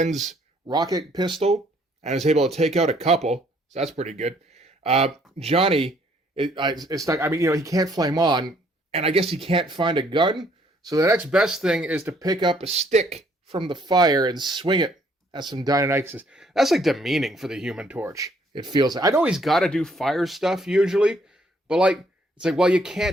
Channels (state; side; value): normal; both; correlation 0.65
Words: rocket pistol and is able to take out a couple, so that's pretty good. Johnny is stuck. I mean, he can't flame on, and I guess he can't find a gun, so the next best thing is to pick up a stick from the fire and swing it at some Deinonychuses. That's like demeaning for the Human Torch. It feels like. I know he's got to do fire stuff usually, but it's like, well, you